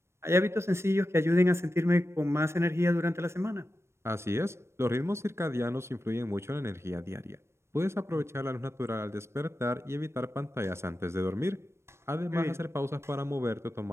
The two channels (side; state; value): left; late; 0.13 ms